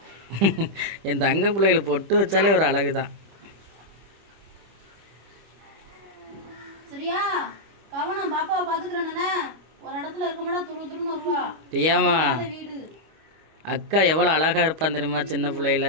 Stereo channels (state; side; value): late; left; 25 ms